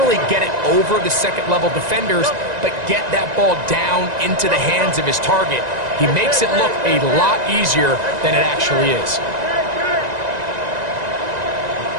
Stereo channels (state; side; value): late; left; 1.9 ms